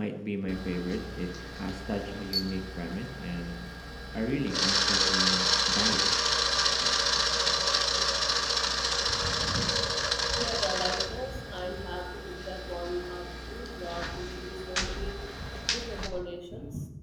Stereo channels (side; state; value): both; identical; correlation 1.00